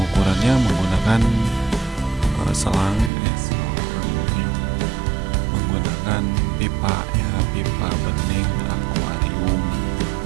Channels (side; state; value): left; drops out; at 3.1 s